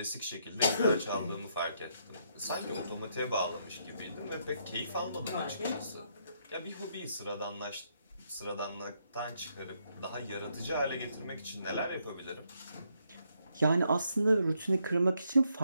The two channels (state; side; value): inverted; both; correlation -0.75